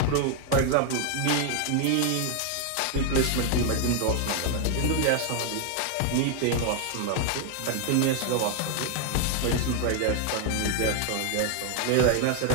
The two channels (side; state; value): both; different; correlation 0.00